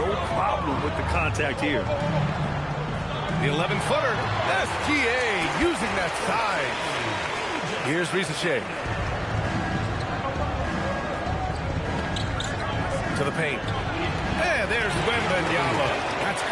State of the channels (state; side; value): identical; both; correlation 1.00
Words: problem with the contact here. The 11-footer. SGA using that size. Here's Risa Shea. To the paint. And there's Wembanyama. That's